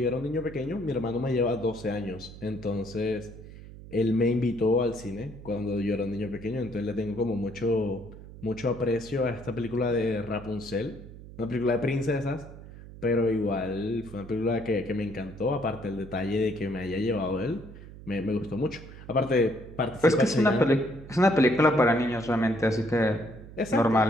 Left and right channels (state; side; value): noise; right; hum, 16 dB below the sound